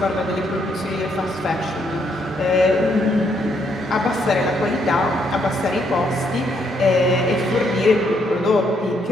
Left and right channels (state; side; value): normal; both; correlation 0.73